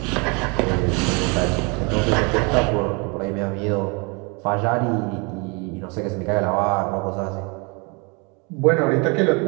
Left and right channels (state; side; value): quieter; left; 30.9 dB